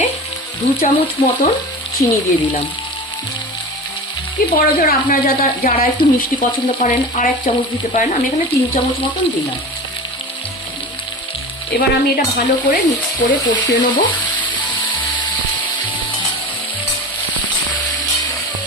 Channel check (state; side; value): normal; both; correlation 0.31